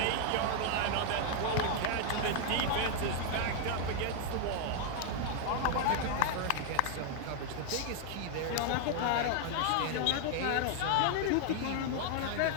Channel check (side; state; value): both; different; correlation 0.00